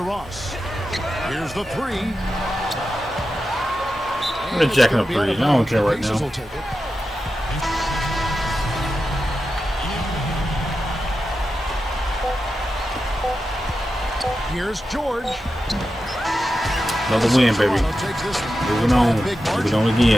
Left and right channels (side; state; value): both; normal; correlation 0.90